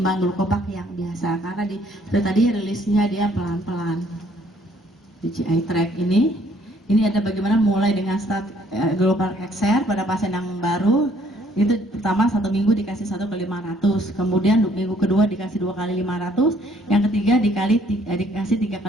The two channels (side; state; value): both; normal; correlation 0.63